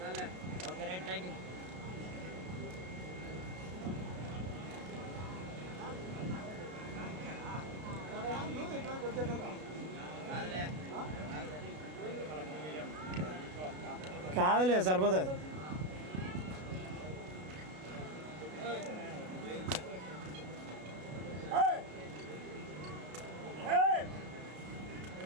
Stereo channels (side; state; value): left; late; 33 ms